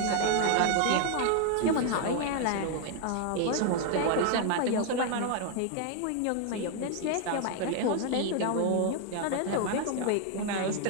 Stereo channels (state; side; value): different; both; correlation 0.00